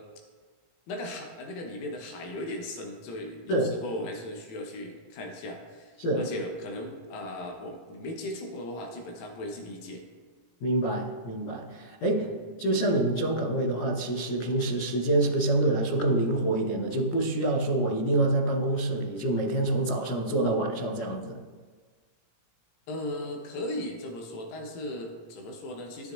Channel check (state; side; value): late; right; 18 ms